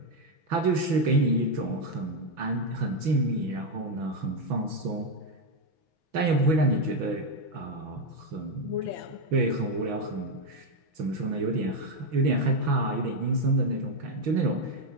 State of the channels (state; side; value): late; left; 6.1 ms